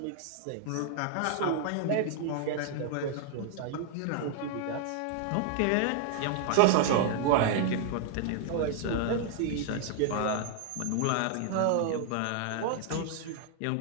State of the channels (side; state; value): both; different; correlation 0.00